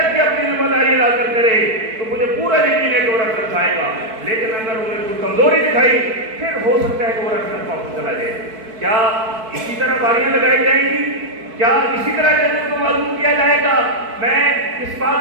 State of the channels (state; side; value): late; left; 4.6 ms